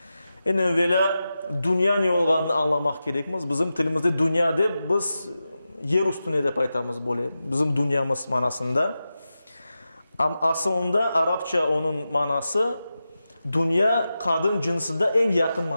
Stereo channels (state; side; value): inverted; both; correlation -0.92